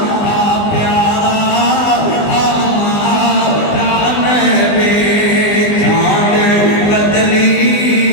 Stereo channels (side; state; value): right; late; 20 ms